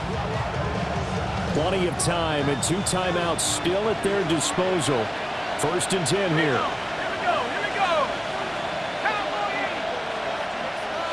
Plenty of time and 2 timeouts still at their disposal. 1st and 10 here. Here we go.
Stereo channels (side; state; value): both; identical; correlation 1.00